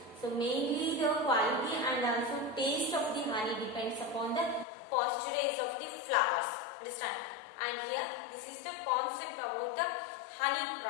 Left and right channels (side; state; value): right; drops out; at 4.7 s